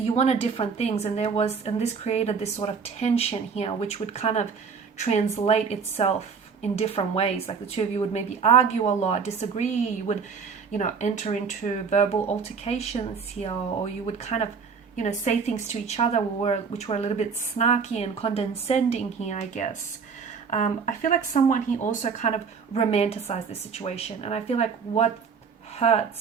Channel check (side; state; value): left; quieter; 5.7 dB